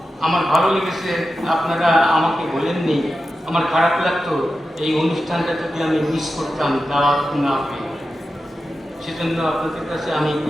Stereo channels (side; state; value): both; normal; correlation 0.91